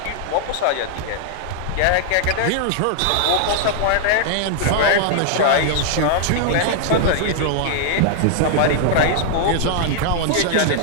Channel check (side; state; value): both; different; correlation 0.00